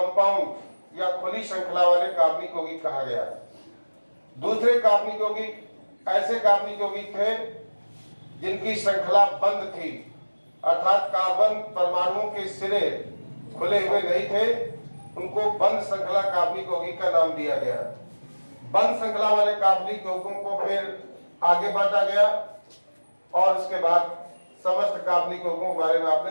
या खुली श्रृंखला वाले कार्बनिक यौगिक कहा गया। दूसरे कार्बनिक यौगिक ऐसे कार्बनिक यौगिक थे जिनकी श्रृंखला बंद थी, अर्थात कार्बन परमाणुओं के सिरे खुले हुए नहीं थे, उनको बंद श्रृंखला कार्बनिक यौगिक का नाम दिया गया। बंद श्रृंखला वाले कार्बनिक यौगिकों को फिर आगे बांटा गया और उसके बाद समस्त कार्बनिक यौगिकों के बारे में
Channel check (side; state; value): both; inverted; correlation -1.00